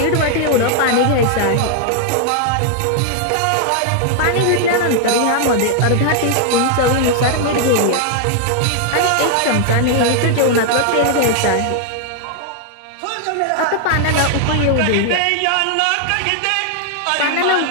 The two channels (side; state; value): both; different; correlation 0.00